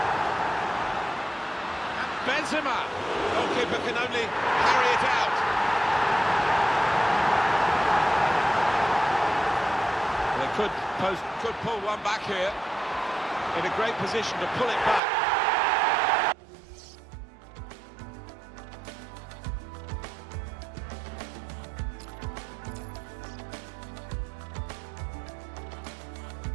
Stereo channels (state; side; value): drops out; left; at 15.0 s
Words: And Benzema. Goalkeeper can only carry it out. They could pull one back here. In a great position to pull it back.